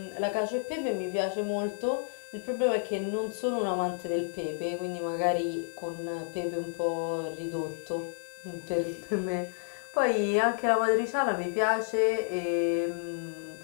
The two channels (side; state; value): right; silent; 57 dB below the other